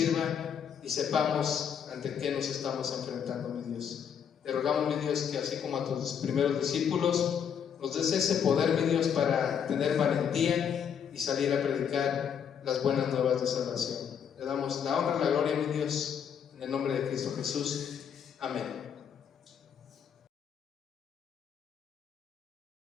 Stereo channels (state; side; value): quieter; right; 7.9 dB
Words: y sepamos ante qué nos estamos enfrentando, mi Dios. Te rogamos, mi Dios, que así como a tus primeros discípulos, nos des ese poder, mi Dios, para tener valentía y salir a predicar las buenas nuevas de salvación. Te damos la honra y la gloria, mi Dios, en el nombre de Cristo Jesús. Amén.